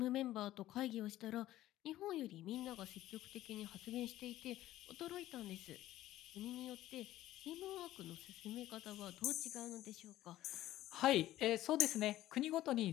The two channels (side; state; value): right; quieter; 14.6 dB